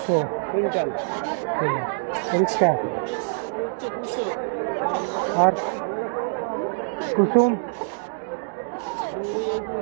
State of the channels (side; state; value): left; silent; digital silence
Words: কুইন্টাল। ঠিক আছে। পরিষ্কার। আর কুসুম